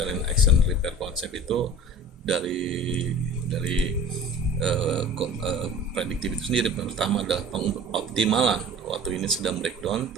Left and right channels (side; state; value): both; normal; correlation 0.41